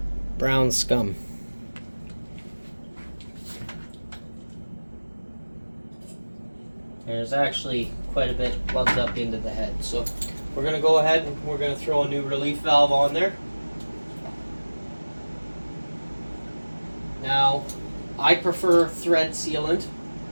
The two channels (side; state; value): both; inverted; correlation -1.00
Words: brown scum. There's actually quite a bit plugged up into the head. So we're going to go ahead and we're going to throw a new relief valve on there. Now, I prefer thread sealant,